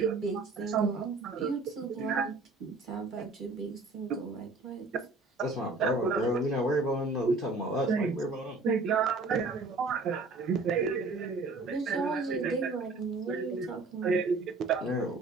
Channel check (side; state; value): left; quieter; 3.6 dB